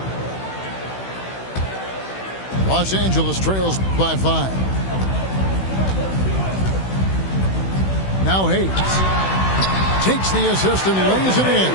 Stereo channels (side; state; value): right; late; 16 ms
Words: Los Angeles trails by 5. Now Hayes takes the assist and lays it in.